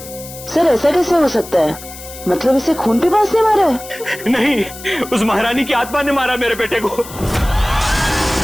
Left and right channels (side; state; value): left; noise; hiss, 15 dB below the sound